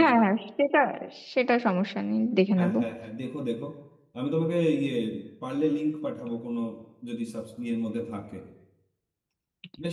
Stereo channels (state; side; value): identical; both; correlation 1.00